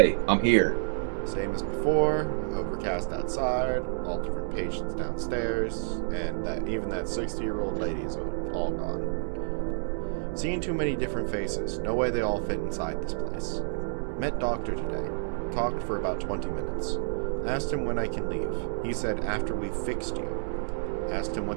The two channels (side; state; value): left; silent; 58 dB below the other